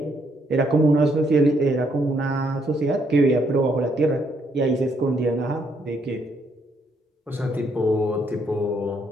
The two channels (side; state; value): both; normal; correlation 0.72